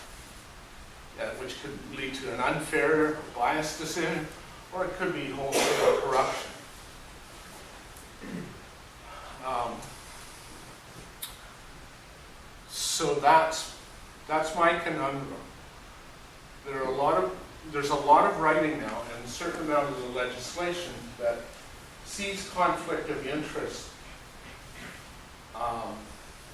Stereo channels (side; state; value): both; identical; correlation 1.00